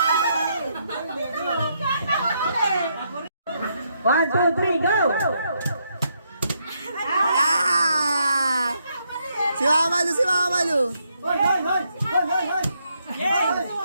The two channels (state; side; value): inverted; both; correlation -0.77